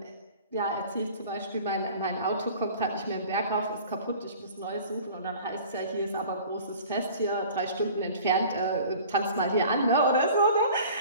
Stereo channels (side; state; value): both; inverted; correlation -0.46